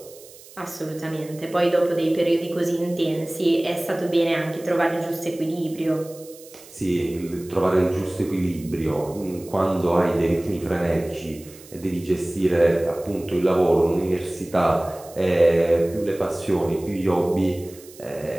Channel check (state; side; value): noise; right; hiss, 21 dB below the sound